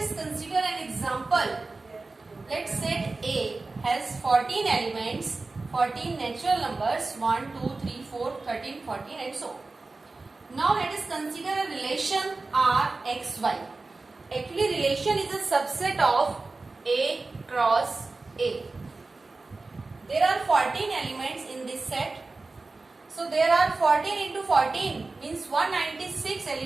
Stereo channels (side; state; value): left; quieter; 3.6 dB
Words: consider an example. Let's set A has 14 elements, 14 natural numbers, 1, 2, 3, 4, 13, 14 and so on. Now let us consider a relation Rxy. Actually, relation is a subset of A cross A. There are 14 elements in this set. So there are 14 into 14 means 196